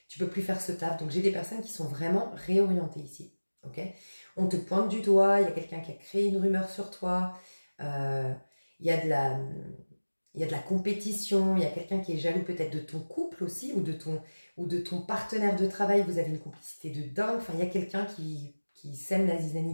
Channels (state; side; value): inverted; both; correlation -1.00